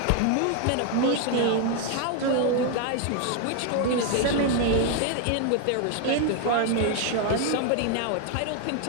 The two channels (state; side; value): different; both; correlation 0.01